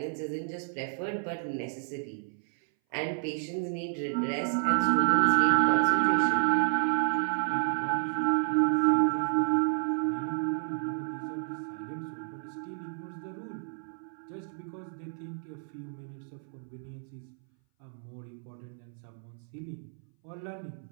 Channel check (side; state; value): left; silent; 57 dB below the other